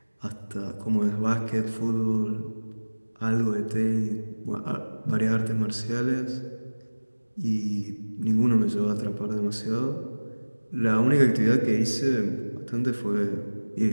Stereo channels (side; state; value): both; inverted; correlation -1.00